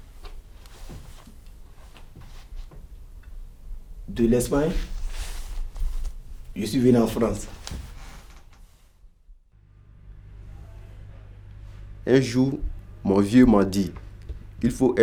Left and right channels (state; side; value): identical; both; correlation 1.00